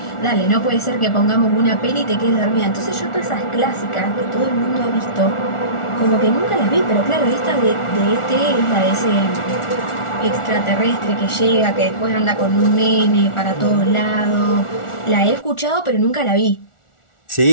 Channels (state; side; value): late; right; 1.4 ms